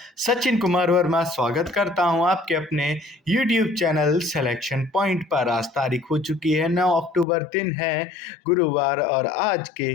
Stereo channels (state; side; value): drops out; right; at 7.2 s